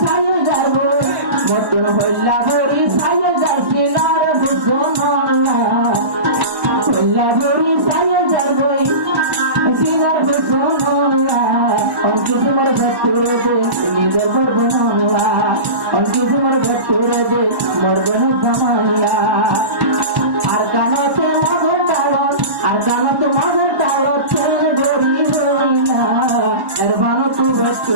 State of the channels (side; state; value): left; late; 1.1 ms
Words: ছায় যাবো মতন হইলা ভরি ছায় যাচ্ছি নার বুঝলা হইলা ভরি ছায় যাবই সিনার বুঝলা অঙ্কি তোমার ভক্তুরে দে নিজের বরবনলা অঙ্কি তোমার ভক্তুরে দে মরবন জামাইয়া